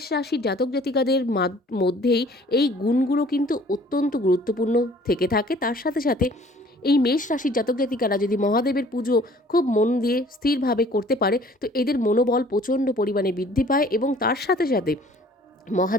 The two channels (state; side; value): normal; both; correlation 0.54